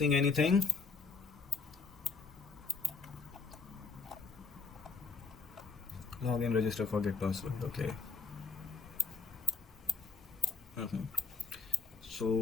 anything? Login, register, forget password. Okay.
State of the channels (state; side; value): quieter; right; 4.7 dB